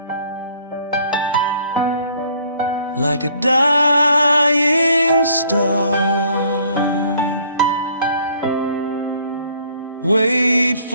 like a dying star. Wait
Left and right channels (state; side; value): inverted; both; correlation -0.60